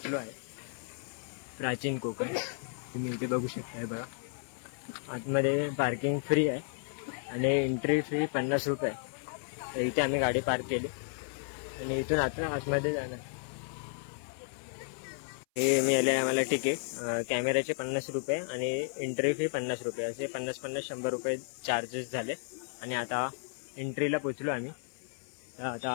आहे प्राचीन कोकण। तुम्ही इथे बघू शकताय बघा, आतमध्ये पार्किंग फ्री आहे आणि एंट्री फी 50 रुपये। तर इथे आम्ही गाडी पार्क केली आणि इथून आता आतमध्ये जाणार। हे मिळाले आम्हाला तिकीट, कॅमेऱ्याचे 50 रुपये आणि एंट्री फी 50 रुपये, असे 50-50 100 रुपये चार्जेस झाले। आणि आता एंट्रीला पोचलो आम्ही,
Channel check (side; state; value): right; silent; 56 dB below the other